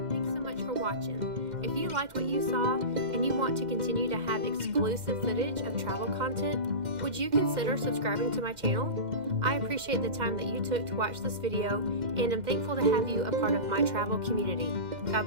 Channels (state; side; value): late; left; 2.1 ms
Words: Thanks so much for watching. If you liked what you saw and you want to continue to have exclusive footage of travel content, would you consider subscribing to my channel? I appreciate the time that you took to watch this video, and I'm thankful to have you a part of my travel community. God